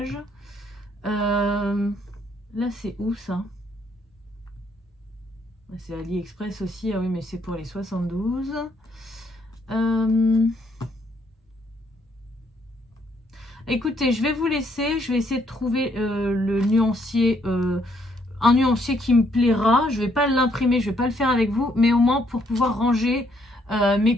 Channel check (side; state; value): both; normal; correlation 0.70